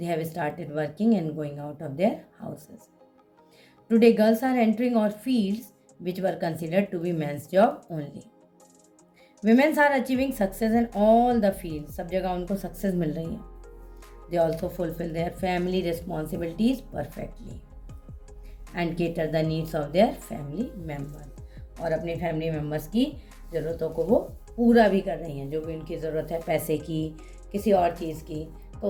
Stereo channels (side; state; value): both; identical; correlation 1.00